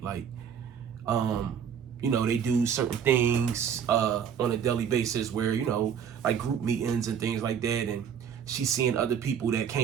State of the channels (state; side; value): quieter; left; 8.0 dB